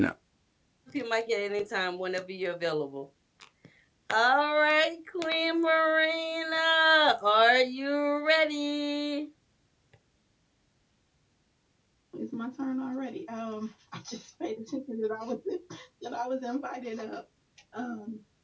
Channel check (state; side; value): identical; both; correlation 1.00